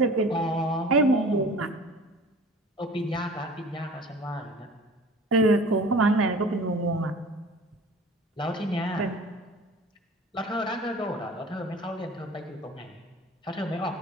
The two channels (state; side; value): normal; both; correlation 0.43